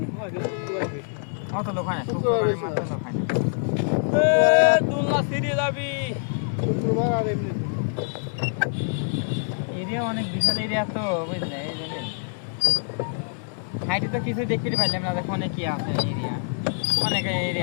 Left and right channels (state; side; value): silent; right; digital silence